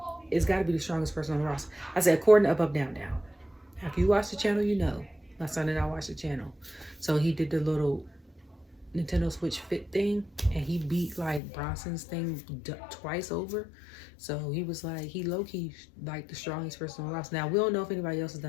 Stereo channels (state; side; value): drops out; right; at 11.4 s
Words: it's got to be the strongest person on the roster. I said, according to Up, Down, Down. If you watch the channel, you know. My son and I watched the channel. So he did the little Nintendo Switch Fit thing, and he beat like Bronson's thing twice over. So he was like, he low-key like the strongest person on the roster. Now, we don't know if anybody else has